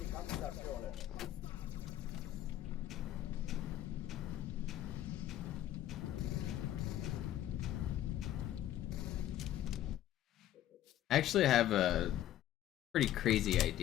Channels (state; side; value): quieter; right; 12.7 dB